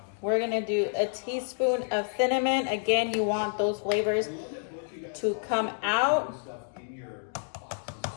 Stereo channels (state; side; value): silent; right; digital silence